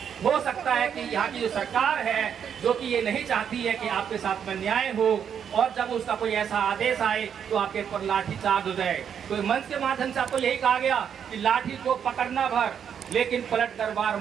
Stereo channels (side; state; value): left; quieter; 8.0 dB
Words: हो सकता है कि यहाँ की जो सरकार है जो कि ये नहीं चाहती है कि आपके साथ में न्याय हो, और जब उसका कोई ऐसा आदेश आए तो आपके ऊपर लाठी चार्ज हो जाए। तो मंच के माध्यम से आपको यही कहा गया कि लाठी को पकड़ना भर, लेकिन पलट कर वार